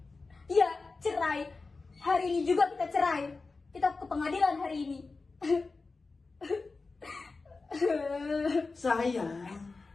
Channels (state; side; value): quieter; right; 3.9 dB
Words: Ya, cerai. Hari ini juga kita cerai. Kita ke pengadilan hari ini. Sayang,